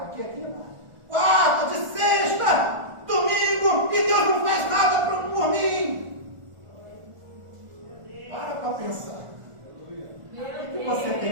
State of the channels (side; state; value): left; late; 1.4 ms